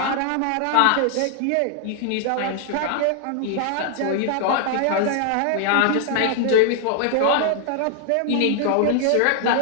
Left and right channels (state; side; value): different; both; correlation 0.00